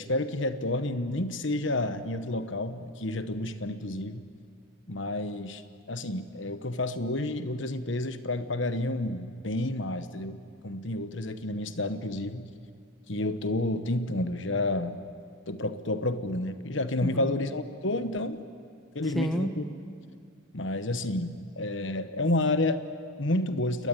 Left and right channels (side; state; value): both; normal; correlation 0.25